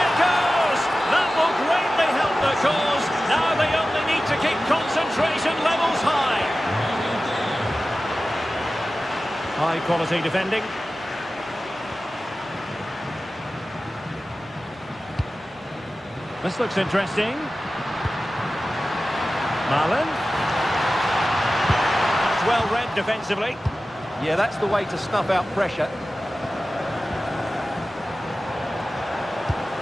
goes. That will greatly help the cause. Now they only need to keep concentration levels high. High quality defending. This looks interesting. Marlon. That's well read defensively. Yeah, that's the way to snuff out pressure.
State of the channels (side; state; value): both; normal; correlation 0.95